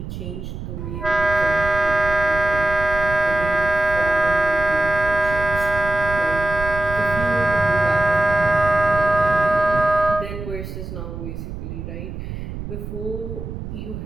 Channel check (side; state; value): right; noise; rumble, 8 dB below the sound